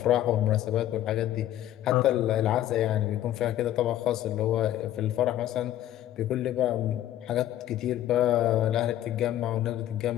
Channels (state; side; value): quieter; right; 12.7 dB